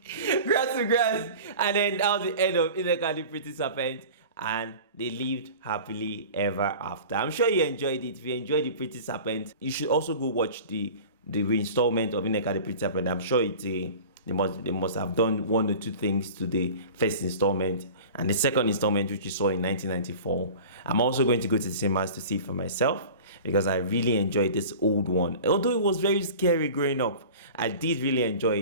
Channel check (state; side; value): inverted; both; correlation -0.38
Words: grass to grass. And then that was the end of Nneka the Pretty Serpent. And they lived happily ever after. I'm sure you enjoyed it. If you enjoyed the Pretty Serpent, you should also go watch the reinstallment of Nneka the Pretty Serpent. I'm sure they must have done one or two things to the first installment and the second installment, which you saw in 1994. I'm also going to go to the cinemas to see it for myself because I really enjoyed this old one. Although it was very scary growing up, I did really